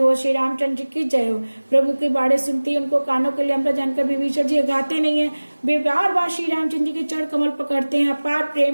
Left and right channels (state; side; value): inverted; both; correlation -1.00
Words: श्री रामचंद्र जी की जय हो। प्रभु की बाड़े सुनती उनको कानों के लिए अमृत जानकर विभीषण जी गाते नहीं है। वे बार बार श्री रामचंद्र जी के चरण कमल पकड़ते हैं। अपार प्रेम